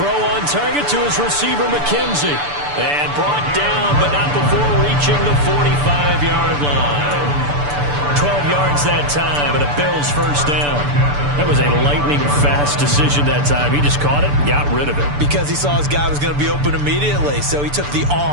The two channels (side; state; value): left; late; 6.9 ms